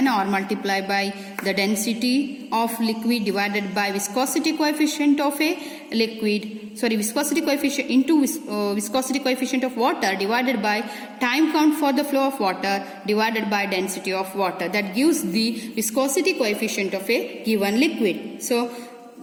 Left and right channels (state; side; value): identical; both; correlation 1.00